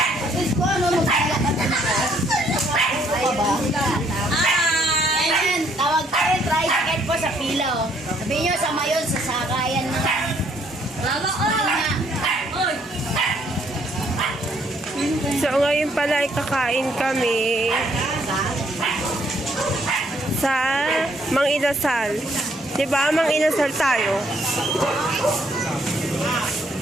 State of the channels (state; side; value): normal; both; correlation 0.68